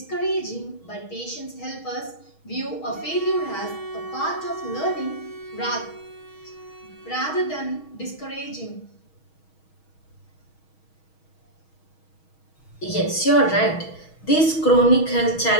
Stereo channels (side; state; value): right; late; 6.3 ms